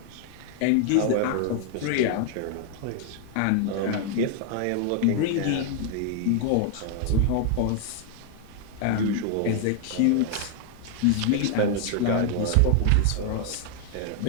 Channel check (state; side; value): different; both; correlation 0.00